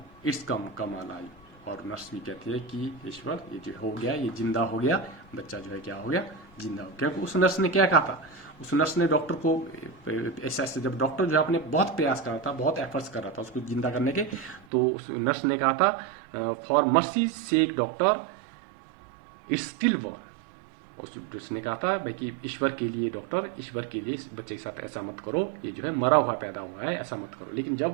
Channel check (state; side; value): drops out; left; at 14.7 s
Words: come alive. और नर्स भी कहती है कि ईश्वर, ये जो हो गया, ये जिंदा हो गया, बच्चा जो है क्या हो गया, जिंदा हो गया। क्योंकि उस नर्स ने क्या कहा था, उस नर्स ने डॉक्टर को ऐसा, जब डॉक्टर जो है अपने बहुत प्रयास कर रहा था, बहुत एफर्ट्स कर रहा था उसको जिंदा करने के, तो उस नर्स ने कहा था, for mercy sake doctor it's still war. उसने कहा था भाई कि ईश्वर के लिए डॉक्टर, ईश्वर के लिए इस बच्चे के साथ ऐसा मत करो, ये जो है मरा हुआ पैदा हुआ है, ऐसा मत करो। लेकिन